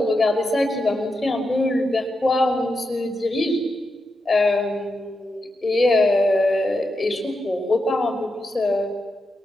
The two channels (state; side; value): normal; both; correlation 0.86